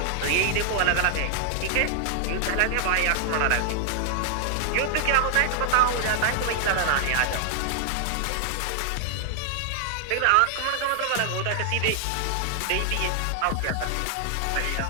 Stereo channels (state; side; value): different; both; correlation 0.00